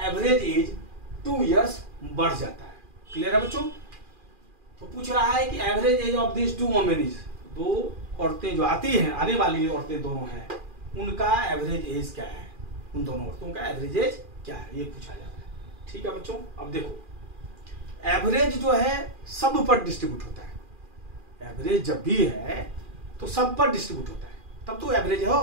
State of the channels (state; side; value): late; left; 2.4 ms